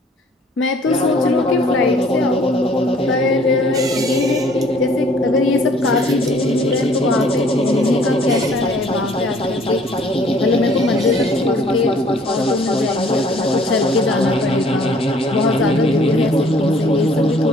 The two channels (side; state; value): both; normal; correlation 0.57